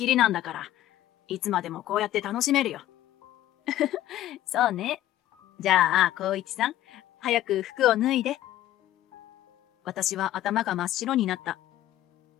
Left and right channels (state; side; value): quieter; right; 13.7 dB